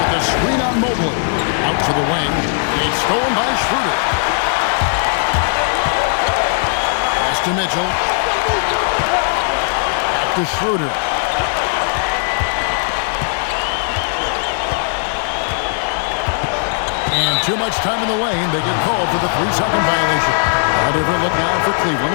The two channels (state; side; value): silent; right; digital silence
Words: with the screen on Mobley. Out to the wing. It's stolen by Schroeder. Pass to Mitchell. To Schroeder. And too much time in the lane. They get called for the 3-second violation. A different look now for Cleveland.